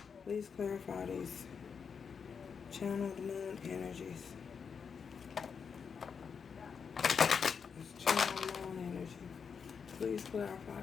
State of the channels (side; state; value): right; quieter; 6.2 dB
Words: Please clarify these channeled moon energies. This channel moon energy. Please clarify